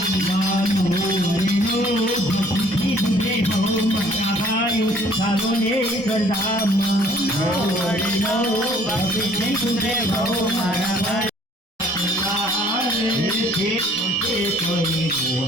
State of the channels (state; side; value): normal; both; correlation 0.57